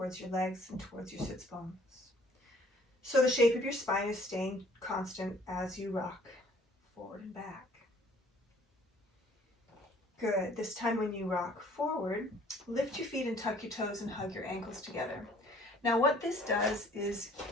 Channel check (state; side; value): normal; both; correlation 0.56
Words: your legs and towards your sits bones. So the shape of your spine is staying constant as you rock forward and back. Good. This time when you rock forward, lift your feet and tuck your toes and hug your ankles together. Now what this does is